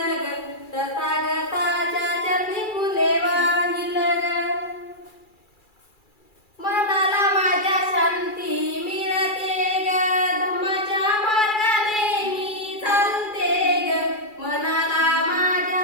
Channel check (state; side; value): late; right; 2.3 ms